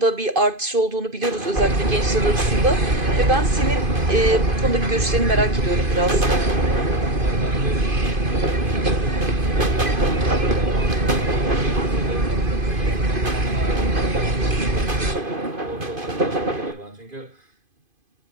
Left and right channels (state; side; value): late; left; 2.5 ms